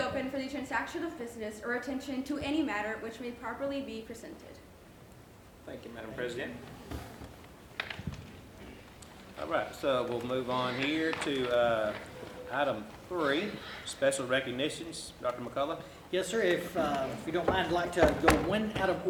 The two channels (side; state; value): both; identical; correlation 1.00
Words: for the transaction of business or attention to any matter which may properly be presented. Thank you, Madam President. All right, so we'll move on here to item 3, special recognitions. Dr. McCullough? Yes, sir. If you don't mind, I'd like to go one out of